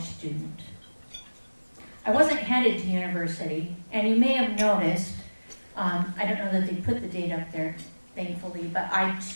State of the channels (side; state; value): both; inverted; correlation -1.00